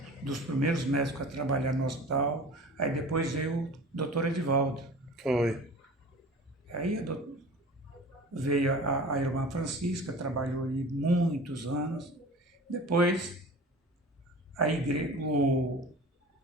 dos primeiros médicos a trabalhar no hospital. Aí depois veio o doutor Edivaldo. Foi. Aí veio a irmã Francisca, trabalhou aí muitos anos. Depois,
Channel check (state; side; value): normal; both; correlation 0.39